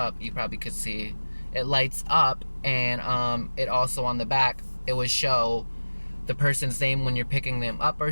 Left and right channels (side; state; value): both; inverted; correlation -1.00